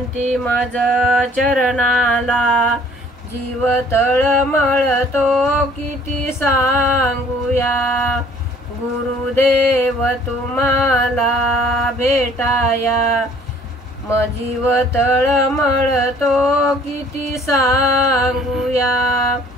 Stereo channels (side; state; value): both; normal; correlation 0.56